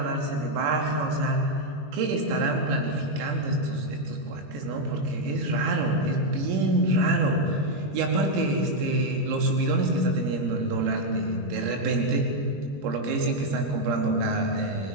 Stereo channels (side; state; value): left; late; 21 ms